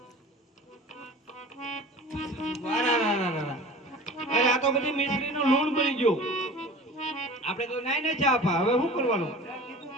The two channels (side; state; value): both; normal; correlation 0.40